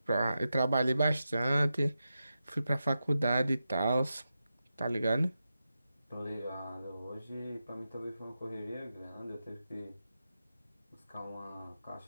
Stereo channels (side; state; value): both; inverted; correlation -0.90